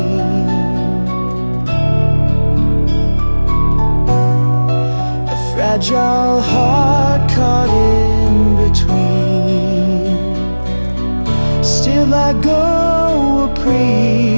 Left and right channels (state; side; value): inverted; both; correlation -1.00